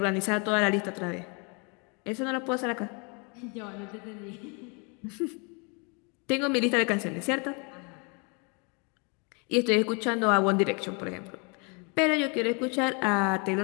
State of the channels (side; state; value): right; quieter; 33.4 dB